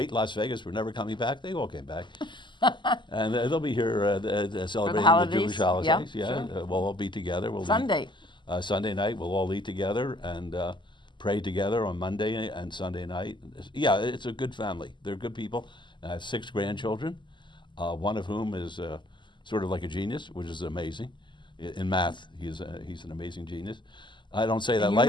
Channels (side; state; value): right; late; 0.22 ms